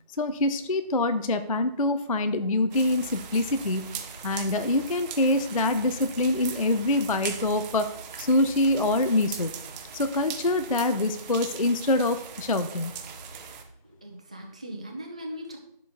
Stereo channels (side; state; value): both; inverted; correlation -0.39